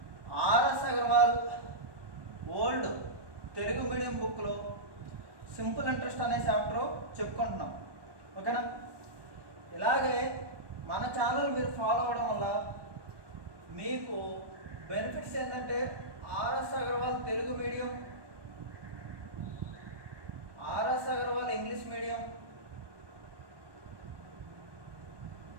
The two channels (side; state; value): left; late; 1.2 ms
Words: RS Agarwal old Telugu medium బుక్లో simple interest అనే చాప్టర్ చెప్పుకుంటున్నాం. ఓకేనా? ఇలాగే మన ఛానల్ మీరు ఫాలో అవ్వడం వల్ల మీకు బెనిఫిట్స్ ఏంటంటే RS Agarwal Telugu medium, RS Agarwal English medium